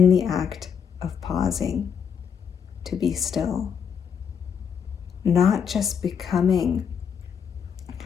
the act of pausing to be still, not just becoming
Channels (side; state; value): right; quieter; 7.2 dB